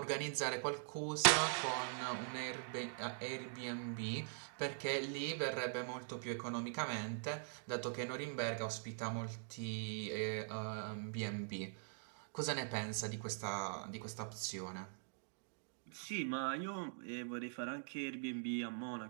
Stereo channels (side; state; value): left; silent; digital silence